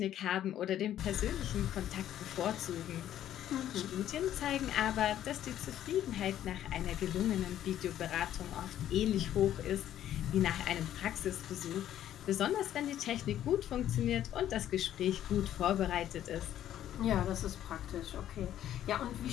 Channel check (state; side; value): quieter; right; 11.6 dB